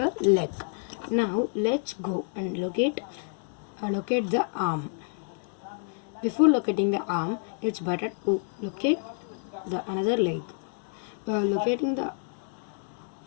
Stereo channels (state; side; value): silent; right; 59 dB below the other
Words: leg. Now let's go and locate the arm. Before locating the arm, it's better to locate the another leg. Locating the